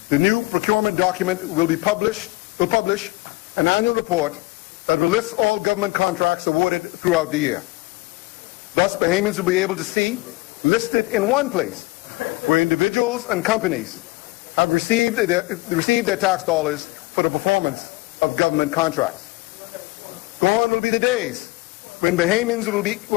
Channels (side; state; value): right; quieter; 22.1 dB